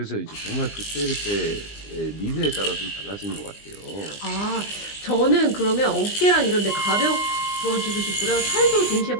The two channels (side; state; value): right; late; 20 ms